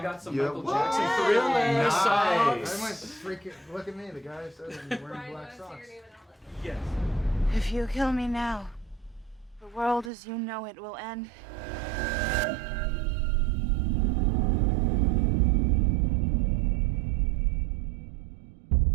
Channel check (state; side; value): drops out; left; at 10.1 s